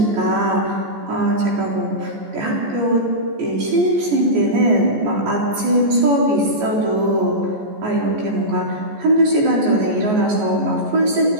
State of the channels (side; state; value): left; late; 14 ms